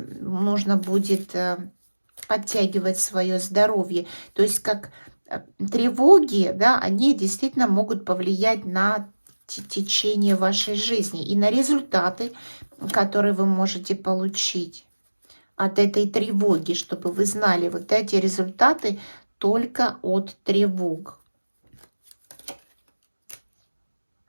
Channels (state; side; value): inverted; both; correlation -1.00